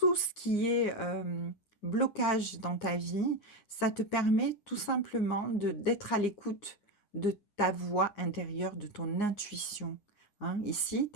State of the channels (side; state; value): right; late; 9.7 ms